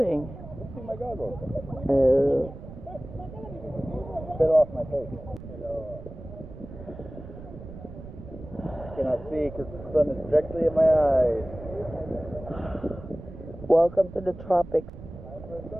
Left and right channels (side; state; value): right; noise; rumble, 14 dB below the sound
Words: Fixing my goggles. Oh. Fell off my face. Hello. I cannot see because the sun is directly in my eyes. Welcome to the tropics. Time for a